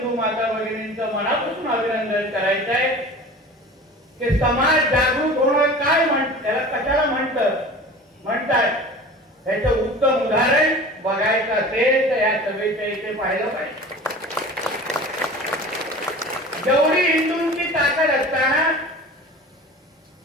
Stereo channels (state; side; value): normal; both; correlation 0.39